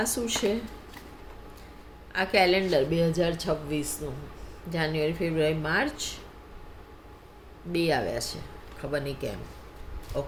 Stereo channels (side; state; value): both; identical; correlation 1.00